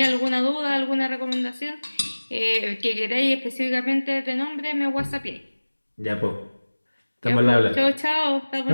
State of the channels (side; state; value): both; inverted; correlation -1.00